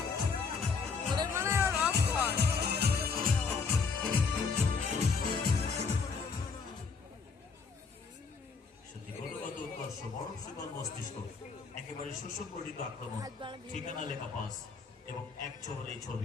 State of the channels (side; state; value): right; quieter; 5.1 dB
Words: একেবারে সুসংগঠিত আক্রমণ, ঠিকানা লেখা পাস এবং এক ছবি